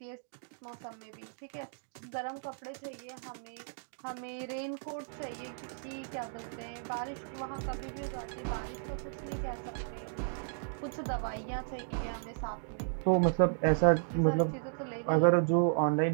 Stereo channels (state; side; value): silent; left; digital silence